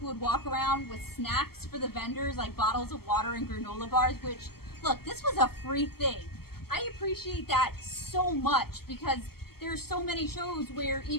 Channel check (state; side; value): late; right; 0.95 ms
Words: would walk around with snacks for the vendors, like bottles of water and granola bars, which, look, this was a free thing. I appreciate that so much because there's so many shows where